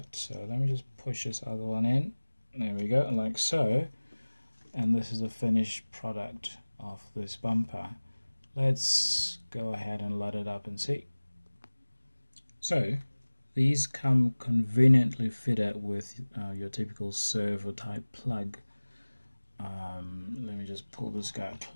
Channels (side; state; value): both; inverted; correlation -1.00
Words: So let me just push this other one in. There we go, like so, and this is a finished product of this bumper. Let's go ahead and light it up and see. So these come conveniently fitted with your typical servo type plug. Let me just pull this guy